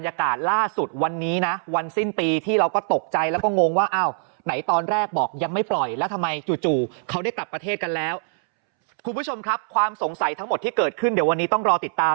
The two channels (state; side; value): silent; left; 63 dB below the other